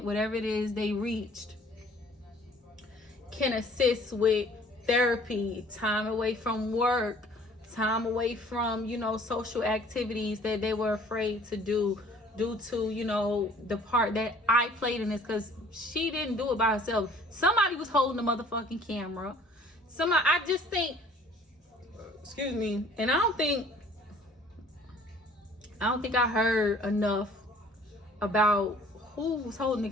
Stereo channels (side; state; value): both; normal; correlation 0.54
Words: whatever it is they reached, can assist with therapy, time away from work, time away from, you know, social activities that they were afraid to do due to, you know, the part that I played in this, because she didn't do it by herself. Somebody was holding the motherfucking camera. I just think, excuse me, and I don't think I heard enough about who was holding the